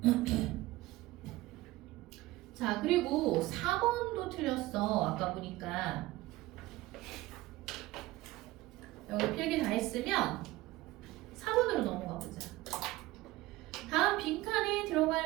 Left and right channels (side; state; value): left; quieter; 18.6 dB